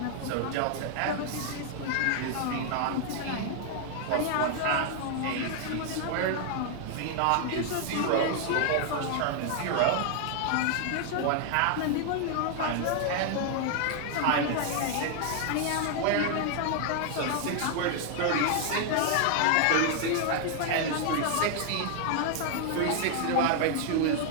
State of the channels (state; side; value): different; both; correlation 0.00